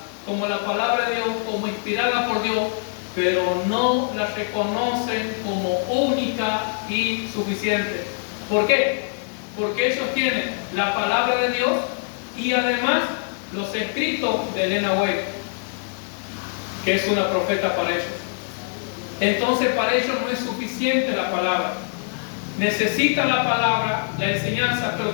como la palabra de Dios, como inspirada por Dios, pero no la reconocen como única y suficiente. ¿Por qué? Porque ellos tienen la palabra de Dios y además los escritos de Elena White, que es una profeta para ellos. Entonces para ellos no es suficiente la palabra. Necesitan la palabra, la enseñanza, pero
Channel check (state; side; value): silent; right; digital silence